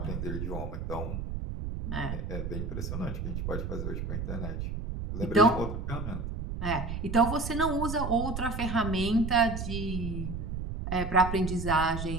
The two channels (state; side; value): noise; right; rumble, 4 dB below the sound